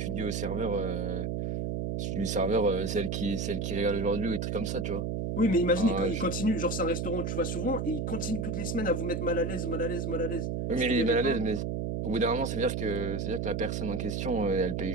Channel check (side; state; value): right; noise; hum, 1 dB below the sound